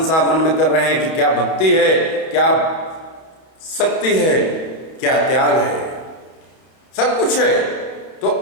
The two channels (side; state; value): right; late; 31 ms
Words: मन में कर रहे हैं कि क्या भक्ति है, क्या शक्ति है, क्या त्याग है, सब कुछ है।